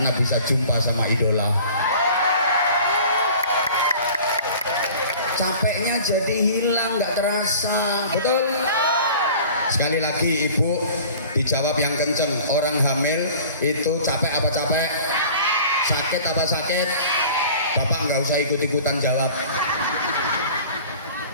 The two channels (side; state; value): both; inverted; correlation -0.45